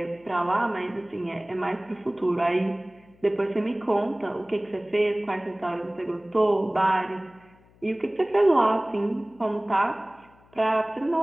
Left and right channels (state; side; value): noise; left; hum, 29 dB below the sound